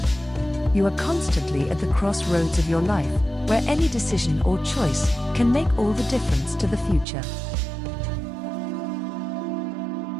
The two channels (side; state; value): left; drops out; at 7.1 s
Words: You are constantly at the crossroads of your life, where any decision or choice can make all the difference to the future.